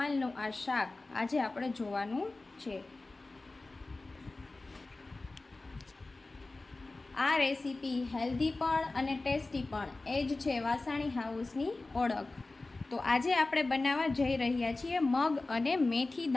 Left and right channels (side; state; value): right; quieter; 3.2 dB